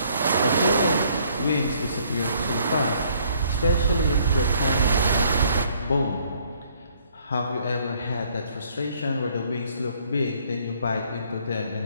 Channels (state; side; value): inverted; both; correlation -0.64